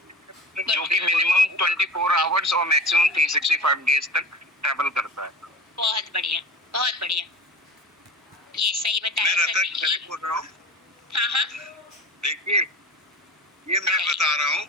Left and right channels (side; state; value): both; normal; correlation 0.34